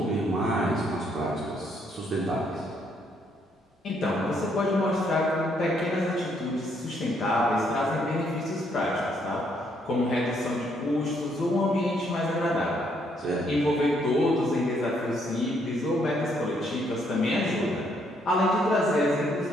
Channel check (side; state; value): both; normal; correlation 0.71